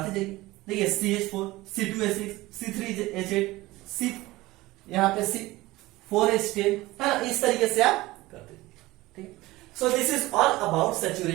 जाइए। देखिए CH4, C2H6, C3H8, यहाँ पे C4H10 है ना, इस तरीके से आप करते जाइए, ठीक। So this is all about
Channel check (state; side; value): quieter; left; 19.1 dB